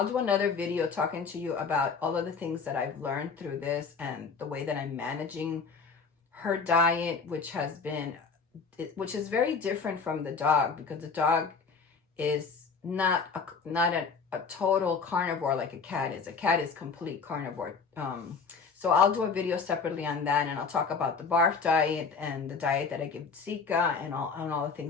do another video talking to you about all of the things that I've learned through this and the way that I'm managing her diet, which is very different from the dog, because the dog is not a total carnivore like a cat is. A cat is complete carnivore. So I'll do a video separately on that, and I'll talk about the barf diet and the diet that I give Zika and all the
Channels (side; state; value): right; quieter; 5.2 dB